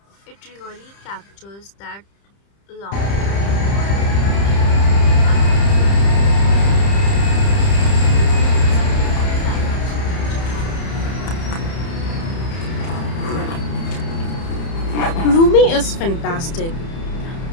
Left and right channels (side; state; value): right; late; 30 ms